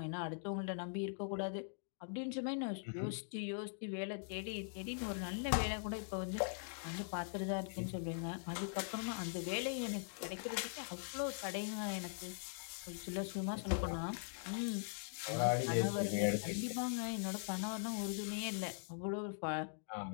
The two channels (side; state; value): right; silent; digital silence